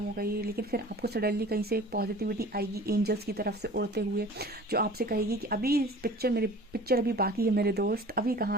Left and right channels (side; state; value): both; normal; correlation 0.43